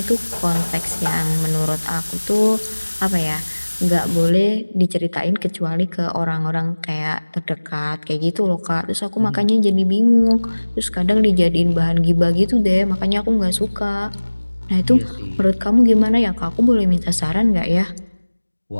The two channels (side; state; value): both; inverted; correlation -1.00